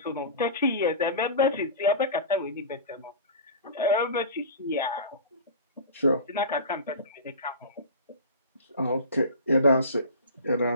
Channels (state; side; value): inverted; both; correlation -0.33